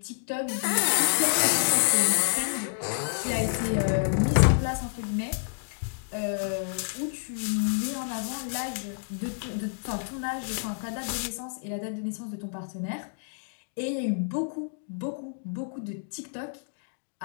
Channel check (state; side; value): silent; right; digital silence